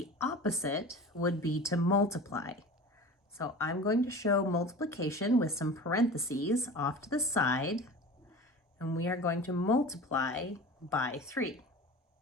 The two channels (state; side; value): normal; both; correlation 0.36